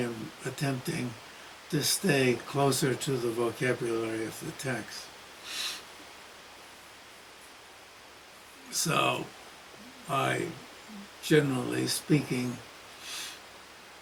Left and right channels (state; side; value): identical; both; correlation 1.00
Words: attempting, to stay closer to the vocabulary of the text. So, I, generally speaking,